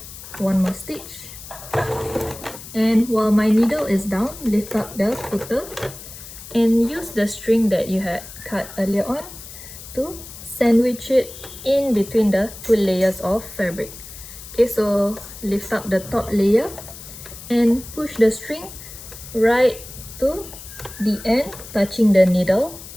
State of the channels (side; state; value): left; noise; hiss, 14 dB below the sound